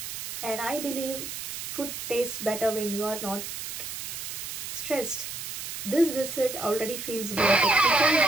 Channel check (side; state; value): right; noise; hiss, 6 dB below the sound